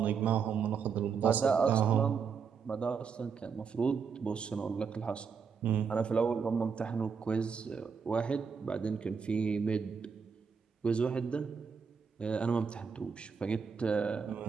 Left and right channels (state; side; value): quieter; left; 6.0 dB